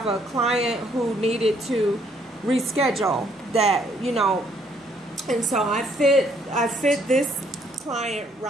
a client who needed to reschedule that, you know, and so I fit this client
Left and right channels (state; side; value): normal; both; correlation 0.67